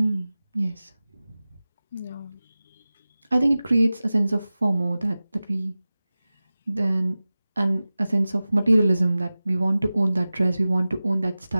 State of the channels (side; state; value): both; inverted; correlation -0.97